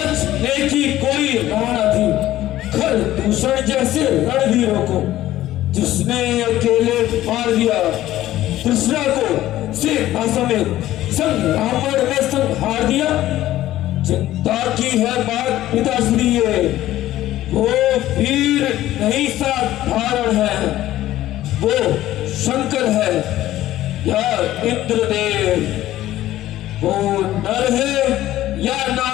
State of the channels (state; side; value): quieter; right; 14.4 dB